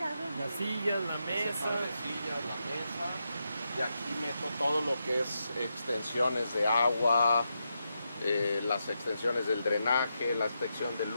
Las sillas, la mesa. la mesa, y aquí meto todo lo que es extensiones de agua, las extensiones del drenaje, la extensión de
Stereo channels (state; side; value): inverted; both; correlation -0.85